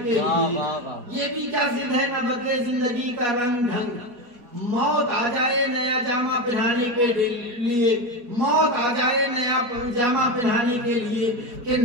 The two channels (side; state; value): left; late; 4.2 ms